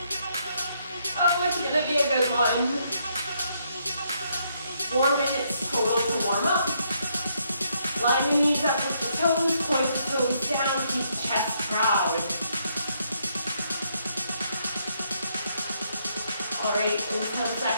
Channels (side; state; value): both; inverted; correlation -0.74